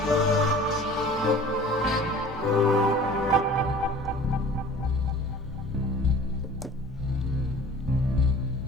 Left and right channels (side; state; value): both; normal; correlation 0.46